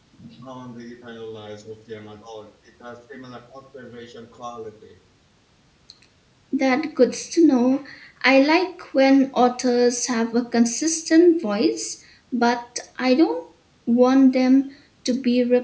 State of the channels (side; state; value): both; identical; correlation 1.00